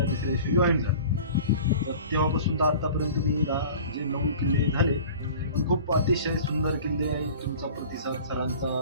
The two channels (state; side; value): inverted; both; correlation -0.42